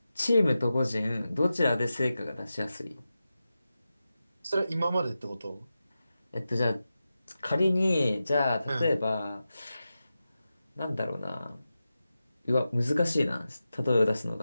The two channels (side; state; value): both; inverted; correlation -0.92